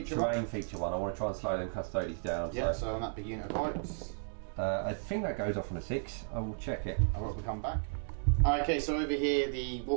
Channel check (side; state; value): left; silent; digital silence